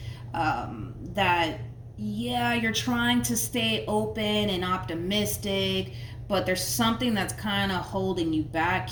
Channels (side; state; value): both; identical; correlation 1.00